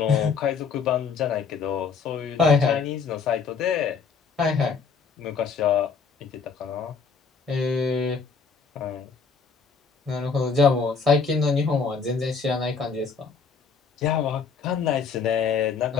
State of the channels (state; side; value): quieter; right; 5.4 dB